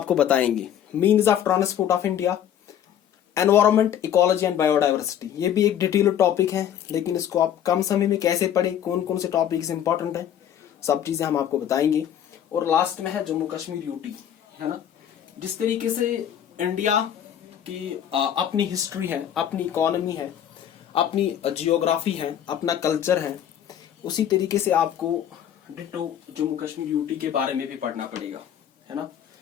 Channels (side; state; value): right; quieter; 10.0 dB